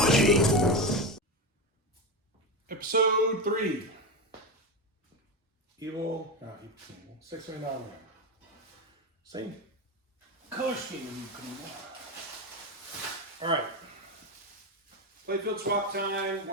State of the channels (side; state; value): both; normal; correlation 0.17